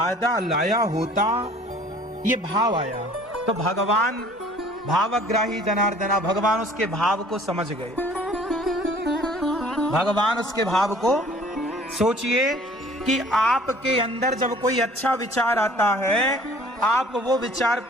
लाया होता, ये भाव आया। तो भगवान भावग्राही जनार्दना, भगवान उसके भाव को समझ गए। भगवान उसके भाव को, सोचिए कि आपके अंदर जब कोई अच्छा विचार आता है, आप वो विचार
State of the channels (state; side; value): normal; both; correlation 0.52